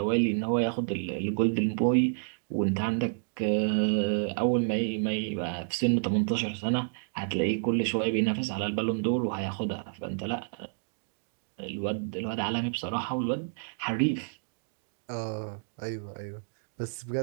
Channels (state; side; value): silent; left; digital silence